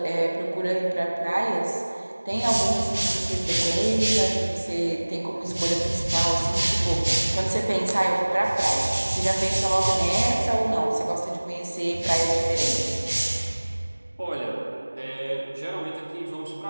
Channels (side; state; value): both; inverted; correlation -1.00